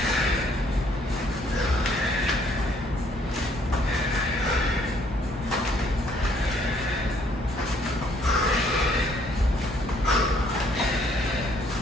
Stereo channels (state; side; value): normal; both; correlation 0.65